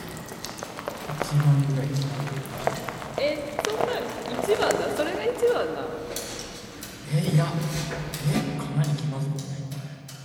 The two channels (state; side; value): identical; both; correlation 1.00